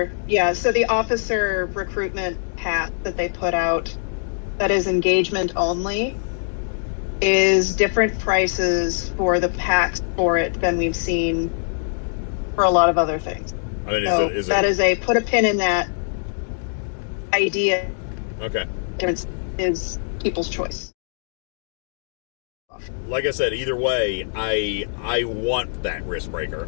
recruitment pack that they put out that is engagement only is different prices for the packs for it than we've seen for a lot of other things. I mean, that is a put a pin in that idea. Okay. Is people's choice. Like I said, either way, I want that risk breaker.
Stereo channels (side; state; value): right; silent; digital silence